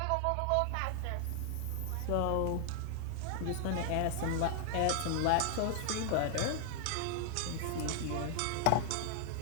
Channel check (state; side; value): different; both; correlation 0.00